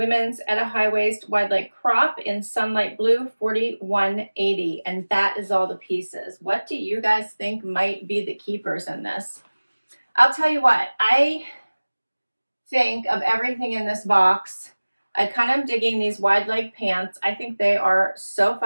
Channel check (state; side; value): inverted; both; correlation -1.00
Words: Etta High Waist Wide Leg Crop in Sunlight Blue, $41.80, and that is all the pieces. What do you guys think might be the keepers in this? I'll tell you what, I think of everything in this box. I kind of am digging these wide leg pants. I think they are so